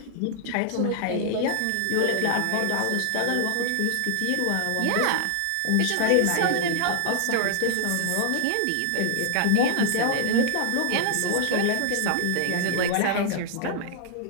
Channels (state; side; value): different; both; correlation 0.00